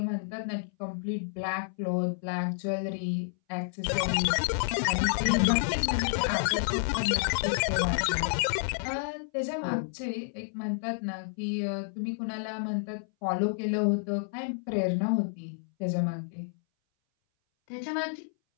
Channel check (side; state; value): right; silent; 58 dB below the other